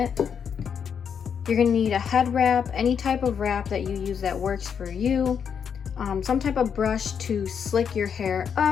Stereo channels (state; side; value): quieter; right; 7.3 dB